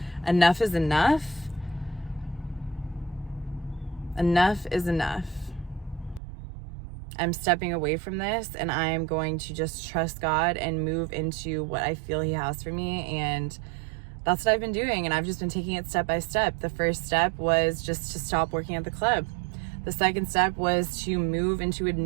enough is enough. Enough is enough. I'm stepping away from this, and I'm going to just trust God and move into what I feel He has for me. And that's what I've been doing. And I've just been taking it step by step. The first step was just to stop working at the club. The second step was to move into a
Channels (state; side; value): drops out; left; at 6.2 s